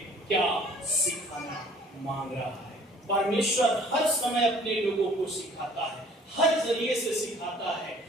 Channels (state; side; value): normal; both; correlation 0.54